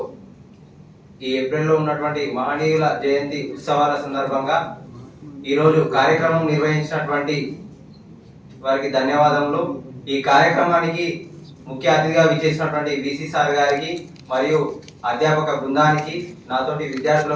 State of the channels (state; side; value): identical; both; correlation 1.00